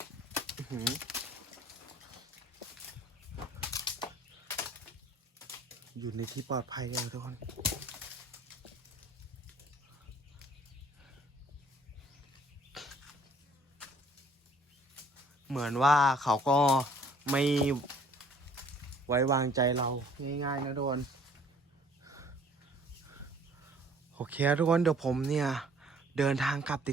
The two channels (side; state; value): both; normal; correlation 0.56